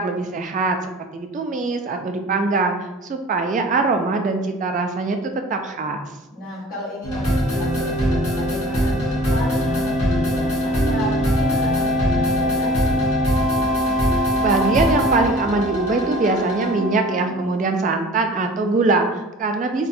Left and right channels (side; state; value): both; normal; correlation 0.44